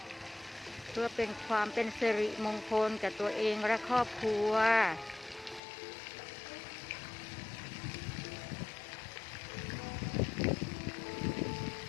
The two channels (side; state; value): right; drops out; at 5.6 s